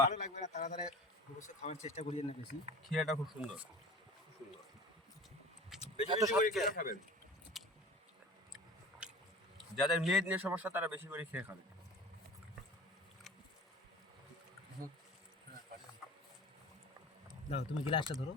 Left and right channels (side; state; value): both; normal; correlation 0.39